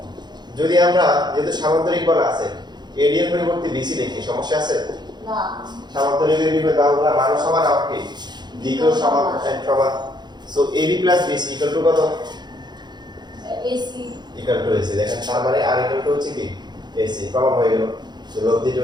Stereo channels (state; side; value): late; left; 0.21 ms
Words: যদি আমরা যেহেতু সামান্তরিক বল আছে ad এর পরিবর্তে bc লিখি, সমস্যা আছে? না। সামান্তরিকের বিপরীত বাহুগুলো মান সমান আর কি দিকও সমান সমান। সো ab + bc = কত? ac = ac। দেখেন তার মানে r = হচ্ছে কি ac, প্রমাণ হয়ে গেল। তো লব্ধিটা